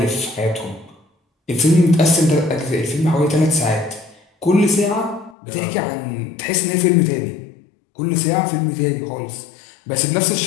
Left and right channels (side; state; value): right; drops out; at 5.4 s